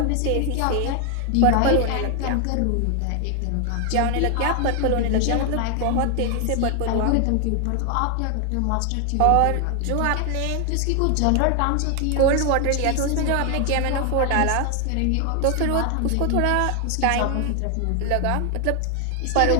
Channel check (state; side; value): different; both; correlation 0.00